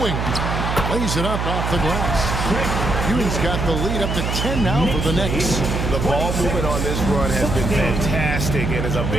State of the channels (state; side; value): noise; right; hum, 1 dB below the sound